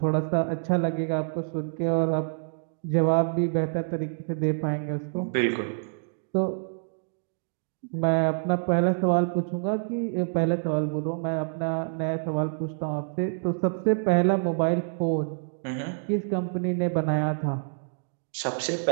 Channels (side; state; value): left; silent; digital silence